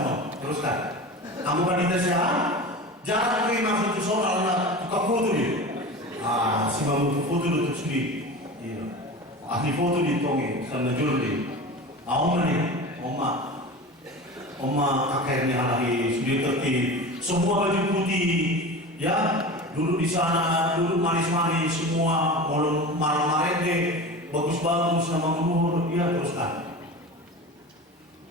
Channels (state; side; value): normal; both; correlation 0.31